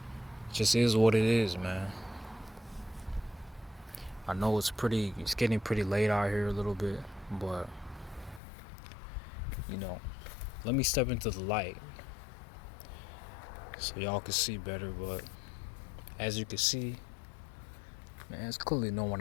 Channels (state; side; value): drops out; right; at 8.4 s